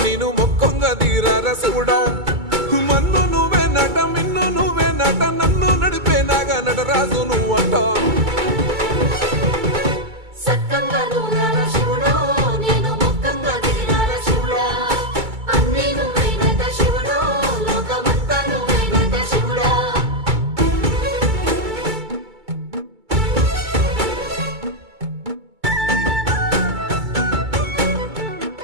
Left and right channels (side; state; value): left; late; 2.2 ms